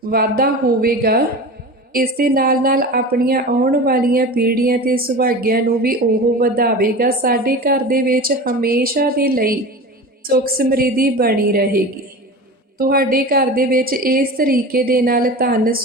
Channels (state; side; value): normal; both; correlation 0.32